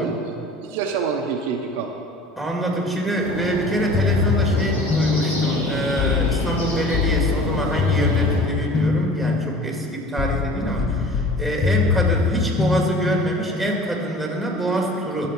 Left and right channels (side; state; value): both; normal; correlation 0.44